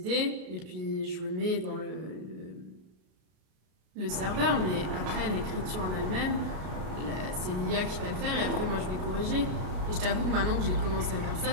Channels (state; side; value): late; left; 33 ms